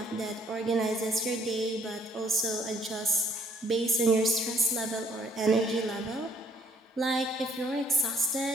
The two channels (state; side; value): normal; both; correlation 0.63